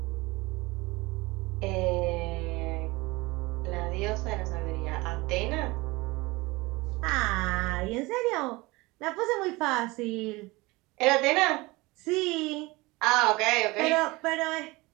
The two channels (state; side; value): quieter; left; 22.7 dB